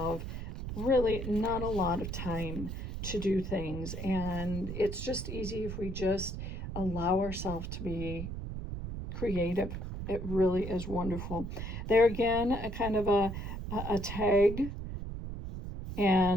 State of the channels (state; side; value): noise; right; rumble, 6 dB below the sound